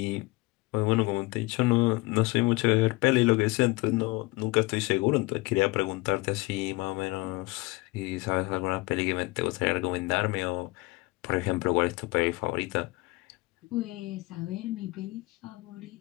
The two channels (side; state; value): right; quieter; 22.8 dB